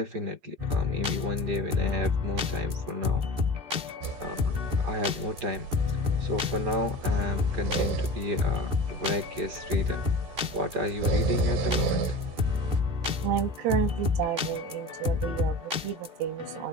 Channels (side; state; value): left; late; 14 ms